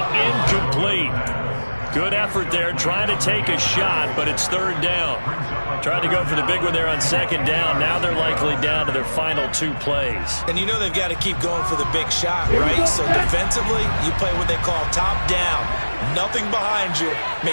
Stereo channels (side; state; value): both; inverted; correlation -1.00